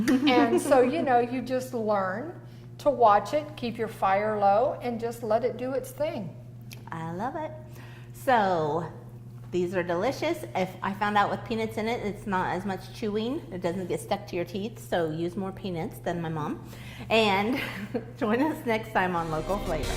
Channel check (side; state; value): both; identical; correlation 1.00